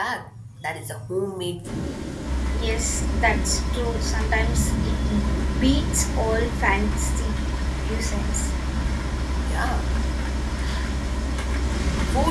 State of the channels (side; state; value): both; identical; correlation 1.00